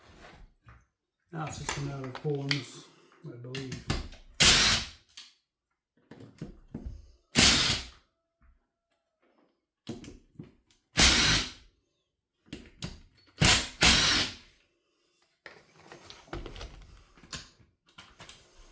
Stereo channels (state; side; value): identical; both; correlation 1.00